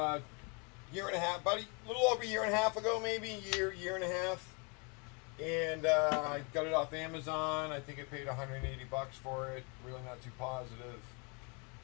year and a half, about a little over a year and a half ago, maybe year and a half. And I got it off Amazon. I think I paid 180 bucks for it. Really not too positive.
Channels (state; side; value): quieter; right; 33.6 dB